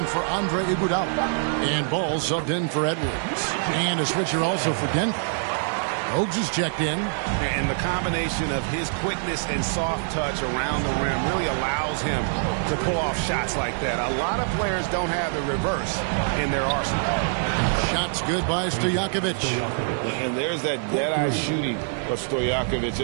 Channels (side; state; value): left; silent; digital silence